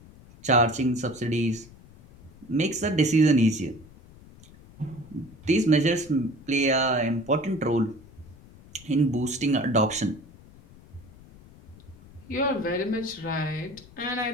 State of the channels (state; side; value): noise; left; rumble, 22 dB below the sound